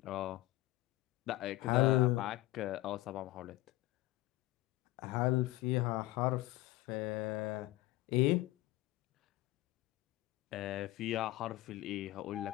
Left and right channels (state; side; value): quieter; right; 17.7 dB